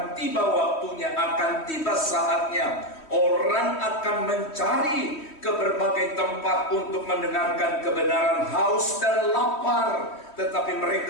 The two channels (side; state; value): right; late; 3.1 ms